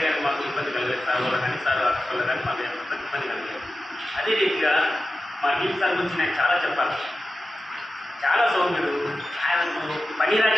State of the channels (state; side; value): normal; both; correlation 0.93